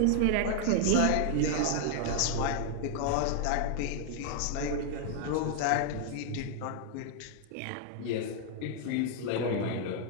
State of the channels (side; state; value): both; different; correlation 0.00